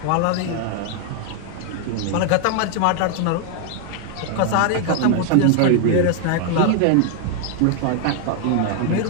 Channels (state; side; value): different; both; correlation 0.00